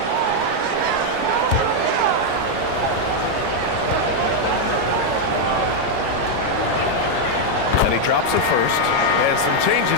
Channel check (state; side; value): different; both; correlation 0.00